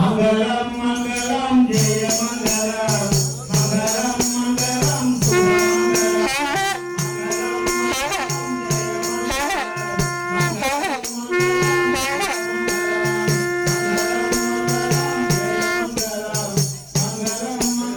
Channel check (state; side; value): identical; both; correlation 1.00